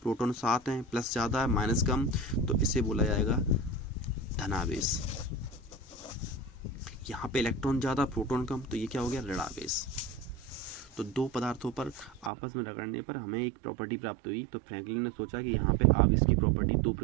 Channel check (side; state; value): left; drops out; at 12.3 s